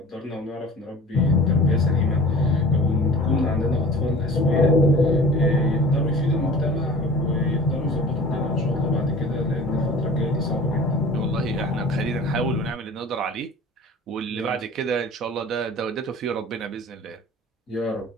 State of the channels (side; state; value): both; normal; correlation 0.42